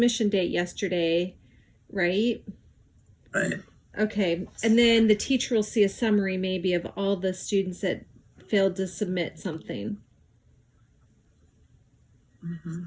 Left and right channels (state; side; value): identical; both; correlation 1.00